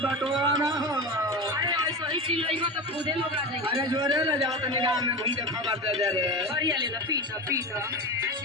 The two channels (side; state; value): both; normal; correlation 0.24